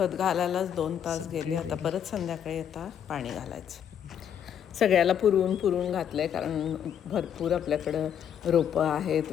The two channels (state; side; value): quieter; right; 9.0 dB